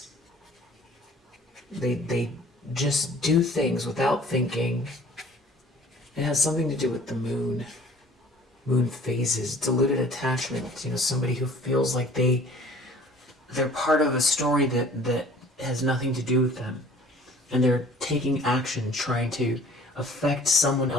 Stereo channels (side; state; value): both; normal; correlation 0.51